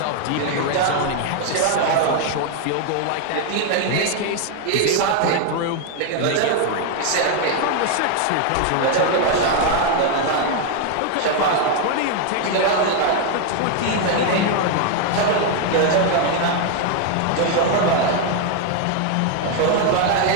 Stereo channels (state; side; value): different; both; correlation 0.01